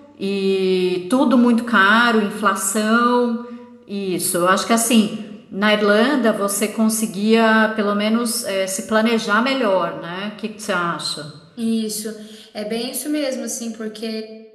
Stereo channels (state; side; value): identical; both; correlation 1.00